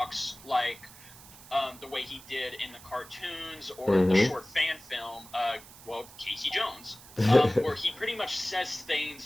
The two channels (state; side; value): noise; right; hiss, 19 dB below the sound